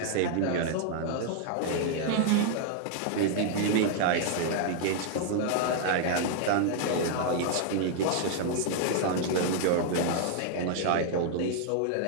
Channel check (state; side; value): different; both; correlation 0.00